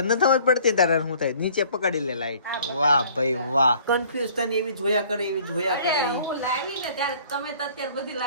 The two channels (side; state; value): both; inverted; correlation -0.54